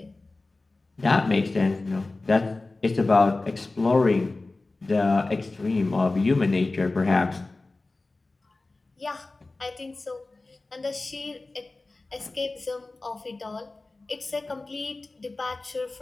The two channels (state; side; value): quieter; right; 3.3 dB